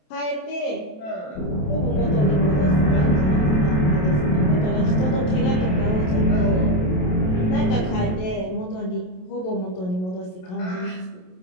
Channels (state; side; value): late; right; 27 ms